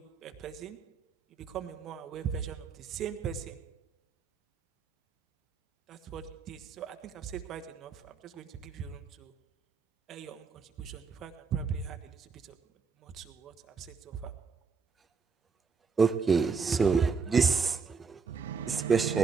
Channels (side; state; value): left; quieter; 5.2 dB